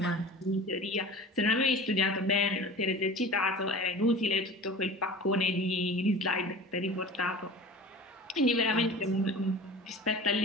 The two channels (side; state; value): both; normal; correlation 0.38